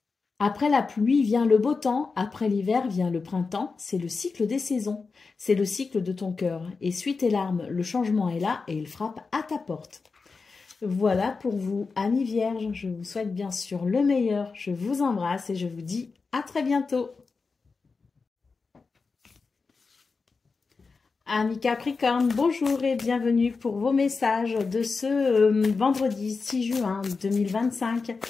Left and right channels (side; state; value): right; quieter; 4.5 dB